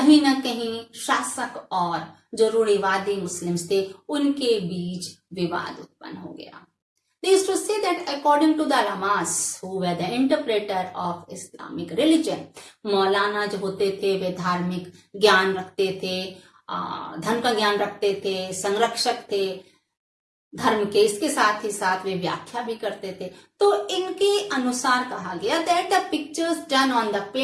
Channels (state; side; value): identical; both; correlation 1.00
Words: ना कहीं शासक और जो रूढ़िवादी मुस्लिम्स थे उनके बीच विवाद उत्पन्न हो गया. They used to say that according to the ulamas who were the interpreter of Islamic religion, मौलाना जो होते थे वे धार्मिक ज्ञान रखते थे, धर्म का ज्ञान रखते थे, संरक्षक थे धर्म के, इसके साथ ही साथ वे व्याख्या भी करते थे. तो इनके अनुसार कहा गया that the pictures done on the